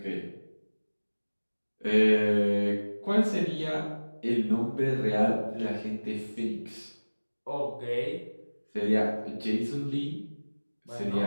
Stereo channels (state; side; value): inverted; both; correlation -1.00